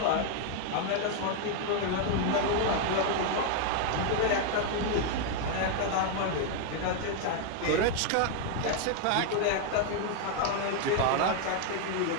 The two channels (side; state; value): both; different; correlation 0.00